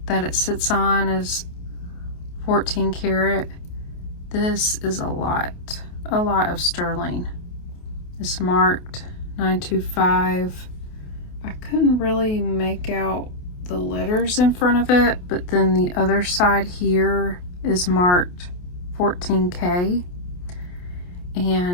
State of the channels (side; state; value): right; late; 28 ms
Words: that it sits on, is 14 karat. This is a lot of sterling. It's marked 925. I couldn't really make out the letters in front of it, but then the other side here is marked 14K.